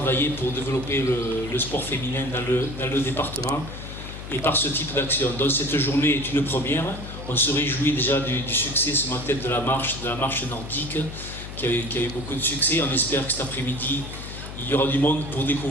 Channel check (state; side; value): noise; left; hum, 10 dB below the sound